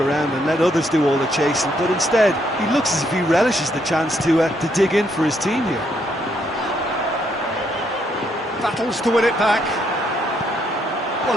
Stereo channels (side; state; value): both; normal; correlation 0.73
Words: around and let others do all the chasing, but instead he looks as if he relishes the chance to dig in for his team here. battles to win it back. Well,